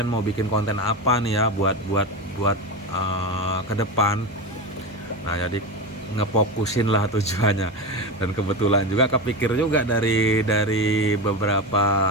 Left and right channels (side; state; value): both; normal; correlation 0.20